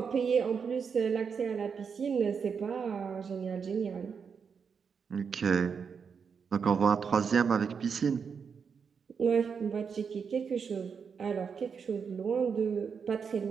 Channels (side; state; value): left; quieter; 6.2 dB